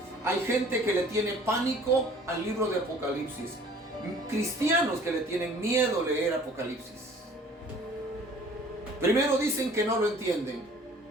Hay gente que le tiene pánico al libro de Apocalipsis. Cristianos que le tienen miedo a leer Apocalipsis. Primero dicen que no lo entienden.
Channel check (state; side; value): normal; both; correlation 0.51